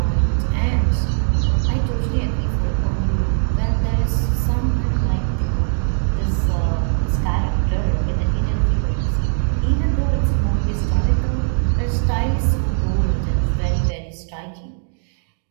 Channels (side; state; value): left; silent; 66 dB below the other